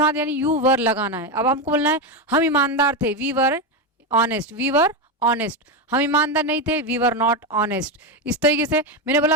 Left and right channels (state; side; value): normal; both; correlation 0.11